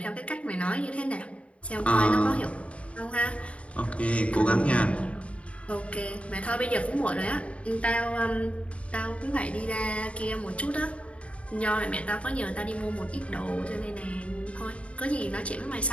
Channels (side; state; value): right; late; 0.063 ms